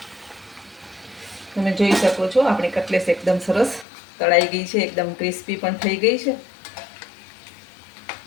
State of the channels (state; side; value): drops out; right; at 3.9 s